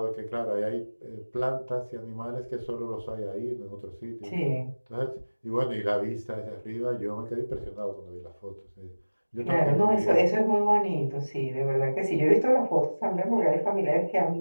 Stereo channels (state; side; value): inverted; both; correlation -1.00